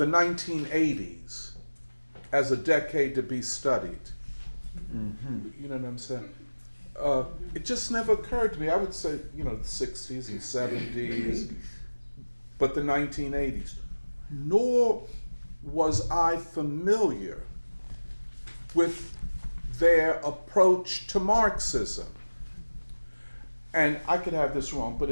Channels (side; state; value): both; inverted; correlation -1.00